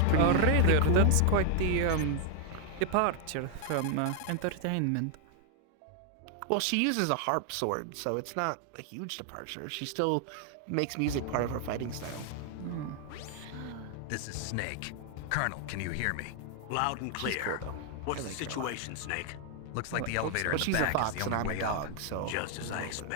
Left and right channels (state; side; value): different; both; correlation 0.00